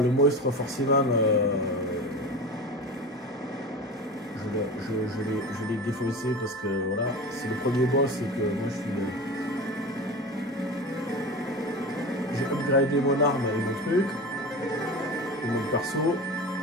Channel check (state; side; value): normal; both; correlation 0.30